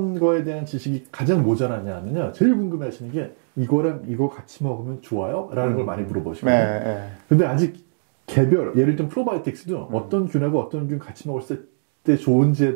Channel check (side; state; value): left; silent; digital silence